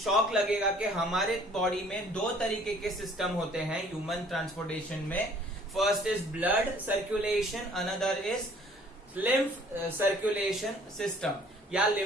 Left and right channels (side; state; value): both; normal; correlation 0.56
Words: लगेगा कि हमारे बॉडी में दो तरीके के सिस्टम होते हैं ह्यूमन ट्रांसपोर्टेशन में। First is blood circulation, another is lymph circulation system या